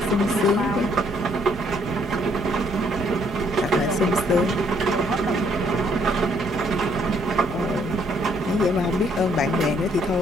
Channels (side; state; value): both; normal; correlation 0.67